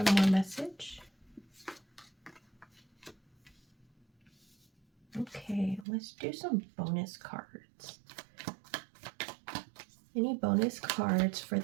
more message. Okay, let's do some bonus cards. Any bonus cards for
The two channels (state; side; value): drops out; left; at 5.9 s